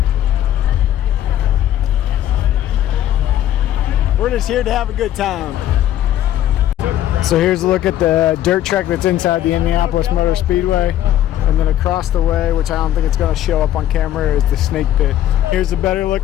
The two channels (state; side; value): quieter; right; 12.1 dB